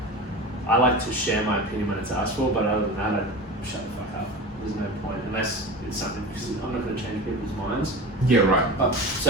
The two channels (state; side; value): normal; both; correlation 0.32